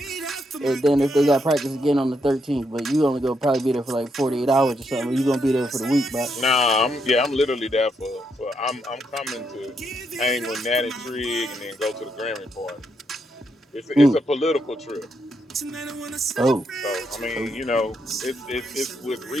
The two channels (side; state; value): both; normal; correlation 0.79